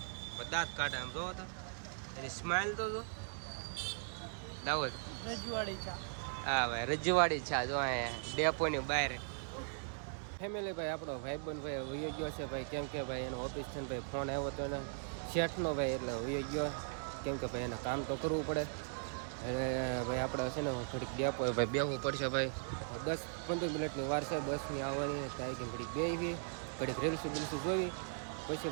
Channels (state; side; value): silent; left; digital silence